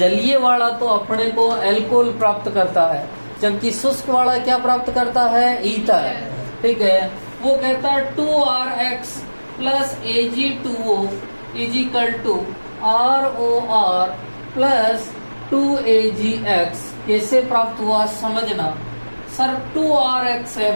वाला तो अपने को एल्कोहल प्राप्त करता है, जबकि शुष्क वाला क्या प्राप्त करता है, ईथर। ठीक है, वो कहता है 2RX plus Ag2O is equal to ROR plus 2AgX। कैसे प्राप्त हुआ समझना सर, 2RX है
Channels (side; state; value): both; inverted; correlation -1.00